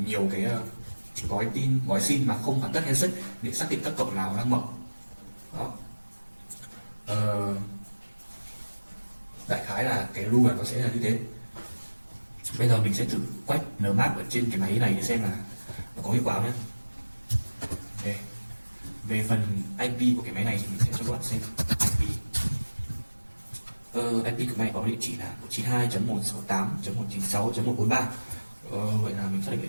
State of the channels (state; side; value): inverted; both; correlation -1.00